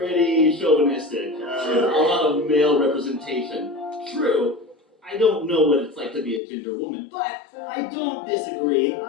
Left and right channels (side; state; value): right; drops out; at 6.4 s